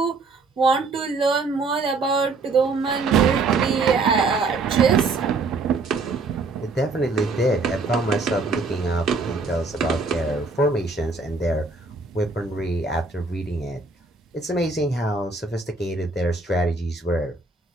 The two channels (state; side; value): quieter; left; 3.8 dB